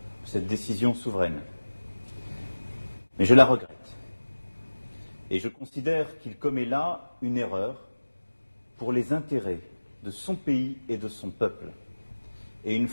cette décision souveraine, mais je la regrette. Et je considère qu'il commet là une erreur pour les intérêts de son pays et de son peuple, et une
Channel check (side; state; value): both; inverted; correlation -1.00